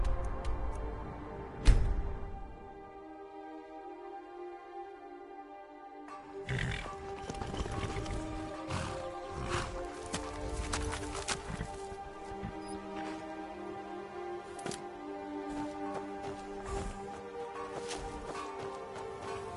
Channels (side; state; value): both; identical; correlation 1.00